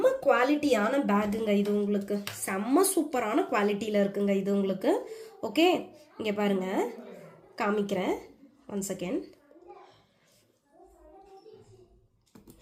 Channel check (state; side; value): identical; both; correlation 1.00